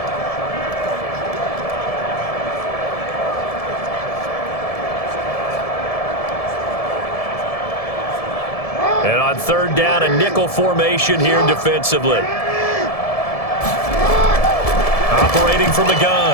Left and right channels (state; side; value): late; right; 1.7 ms